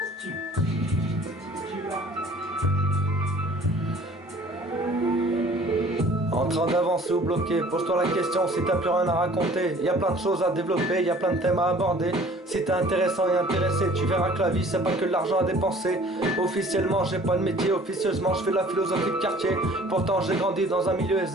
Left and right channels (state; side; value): normal; both; correlation 0.51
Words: En train d'avancer ou bloqué, pose-toi la question si t'as plus rien à raconter. Y a plein de choses à développer, y a plein de thèmes à aborder. Si t'es intéressant et intéressé, tu verras que la vie c'est pas que de l'argent à dépenser. Officiellement j'ai pas de métier, officieusement je fais de la philosophie de quartier. Pourtant j'ai grandi dans un milieu